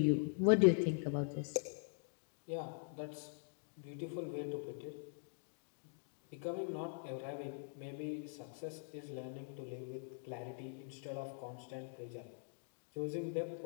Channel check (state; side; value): silent; right; digital silence